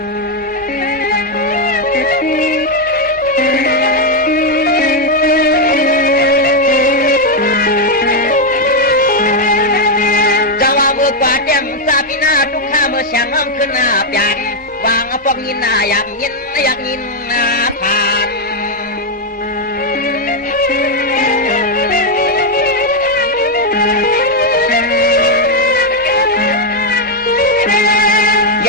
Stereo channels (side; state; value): both; normal; correlation 0.01